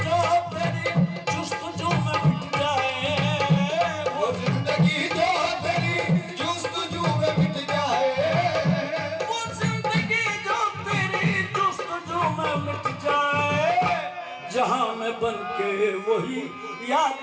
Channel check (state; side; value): identical; both; correlation 1.00